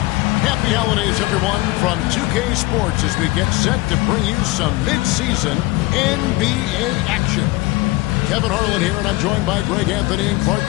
Happy holidays, everyone, from 2K Sports as we get set to bring you some mid-season NBA action. Kevin Harlan here, and I'm joined by Greg Anthony and Clark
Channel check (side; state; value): right; quieter; 20.6 dB